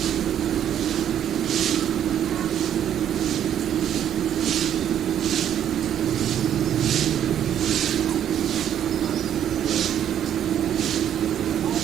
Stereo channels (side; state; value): left; quieter; 10.1 dB